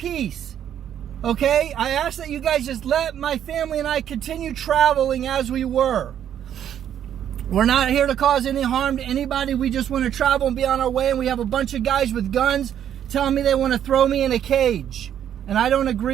Okay, I ask that you guys just let my family and I continue traveling as we were. We're not here to cause any harm to anybody. We just want to travel and be on our way. And we have a bunch of guys with guns telling me they want to throw me in a cage. And I don't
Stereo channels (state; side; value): quieter; left; 9.9 dB